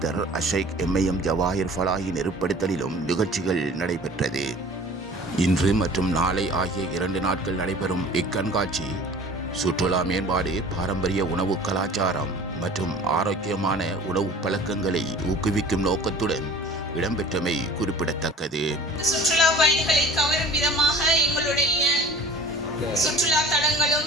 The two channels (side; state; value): both; normal; correlation 0.45